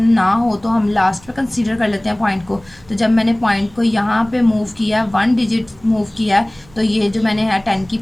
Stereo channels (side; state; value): right; noise; rumble, 27 dB below the sound